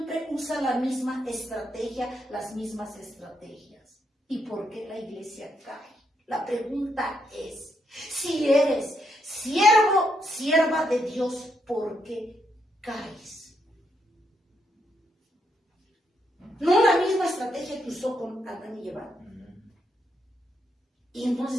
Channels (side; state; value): both; normal; correlation 0.78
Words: usa la misma estrategia, las mismas estrategias. ¿Y por qué la iglesia cae? La pregunta es, si eres siervo, sierva de Dios, ¿por qué caes? No la misma estrategia que usó con Adán y Eva. Y